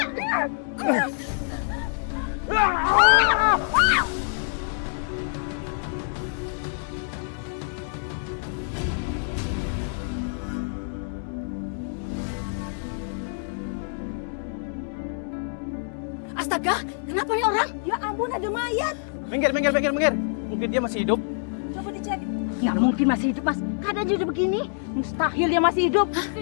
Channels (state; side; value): silent; right; digital silence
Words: Astaga, kenapa nih orang? Ya ampun, ada mayat. Minggir. Mungkin dia masih hidup. Coba dicek. Nggak mungkin masih hidup, Mas. Keadaan udah begini. Mustahil dia masih hidup.